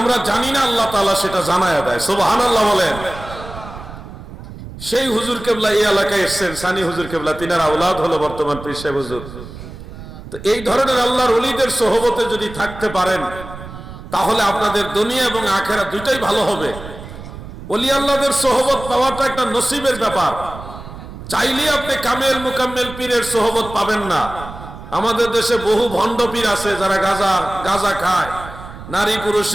জানি না আল্লাহ তাআলা সেটা জানায়া দেয়। সুবহানাল্লাহ বলেন। সেই হুজুর কেবলা এই এলাকায় এসেছেন, সানি হুজুর কেবলা, তিনার আওলাদ হলো বর্তমান পীর সাহেব হুজুর। তো এই ধরনের আল্লাহর ওলিদের সোহবতে যদি থাকতে পারেন তাহলে আপনাদের দুনিয়া এবং আখিরাত দুইটাই ভালো হবে। ওলি আল্লাহদের সোহবত পাওয়াটা একটা নসিবের ব্যাপার। চাইলে আপনি কামেল মুকাম্মেল পীরের সোহবত পাবেন না। আমাদের দেশে বহু ভণ্ড পীর আছে যারা গাঁজা খায়, নারী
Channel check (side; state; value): right; noise; rumble, 13 dB below the sound